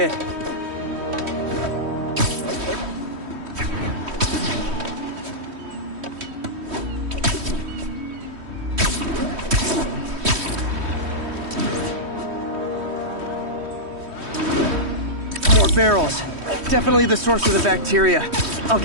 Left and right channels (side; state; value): left; late; 3.1 ms